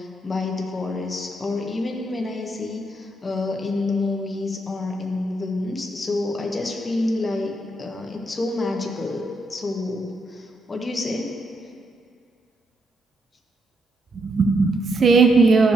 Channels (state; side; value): normal; both; correlation 0.77